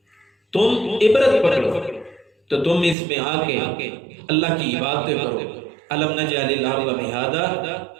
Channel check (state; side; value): drops out; left; at 3.0 s